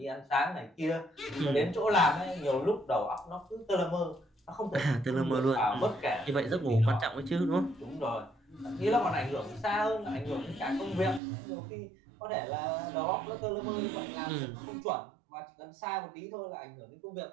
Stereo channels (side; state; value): left; drops out; at 11.2 s